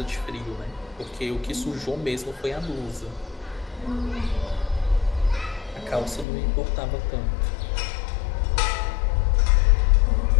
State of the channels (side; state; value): right; drops out; at 6.2 s